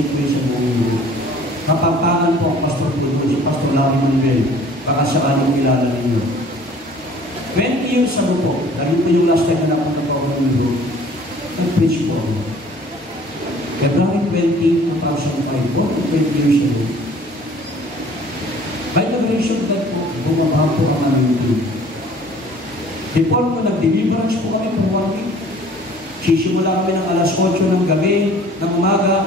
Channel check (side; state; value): both; normal; correlation 0.51